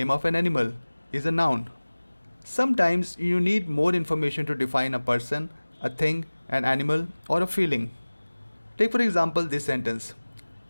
of an animal, is a noun. Sometimes you need more information to define a person, a thing, an animal, or a feeling. Take for example this sentence.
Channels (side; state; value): both; inverted; correlation -1.00